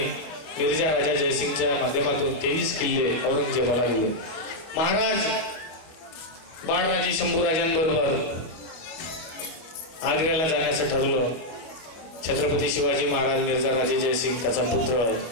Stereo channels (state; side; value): late; right; 25 ms